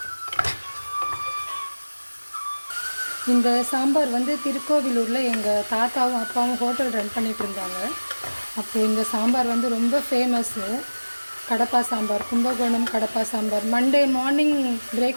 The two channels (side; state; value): both; inverted; correlation -1.00